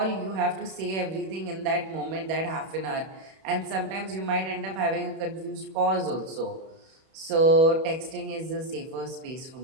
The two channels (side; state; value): left; late; 31 ms